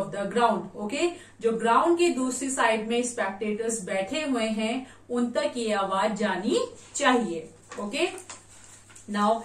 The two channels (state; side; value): identical; both; correlation 1.00